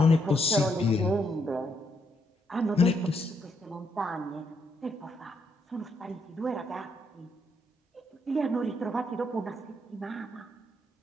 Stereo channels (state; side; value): normal; both; correlation 0.76